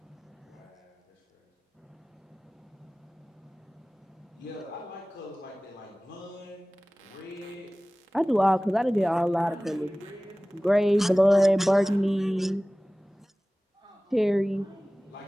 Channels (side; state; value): both; normal; correlation 0.98